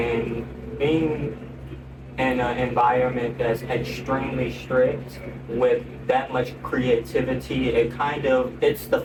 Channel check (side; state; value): both; identical; correlation 1.00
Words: being in an environment that's extremely strict with that much creativity, it's the